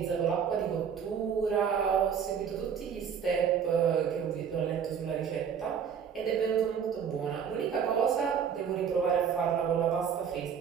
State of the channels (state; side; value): quieter; left; 7.4 dB